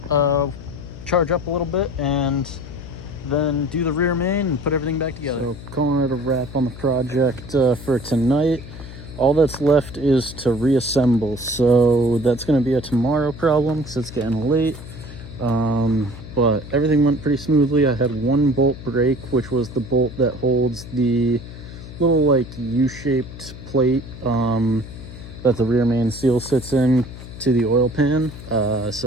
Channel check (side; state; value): left; noise; hum, 14 dB below the sound